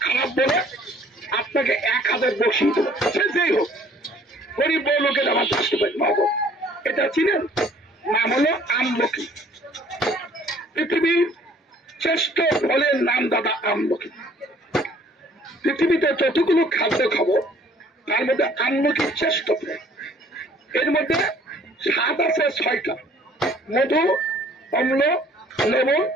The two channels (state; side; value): normal; both; correlation 0.57